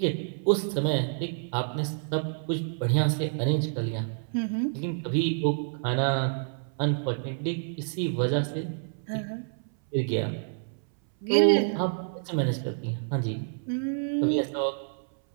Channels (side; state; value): left; silent; 59 dB below the other